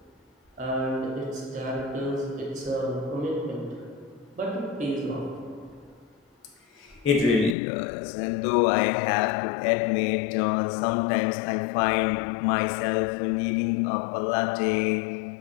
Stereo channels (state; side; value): drops out; right; at 7.6 s